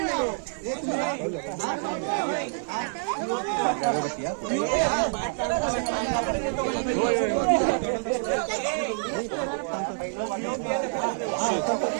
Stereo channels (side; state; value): left; silent; 60 dB below the other